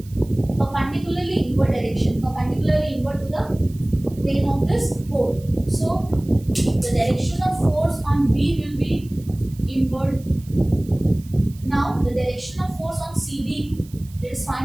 perpendicularly inward direction, perpendicularly inward to the plane of this pole. So the direction of force on B will be inward. Now the direction of force on CD, let's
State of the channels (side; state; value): right; noise; hiss, 25 dB below the sound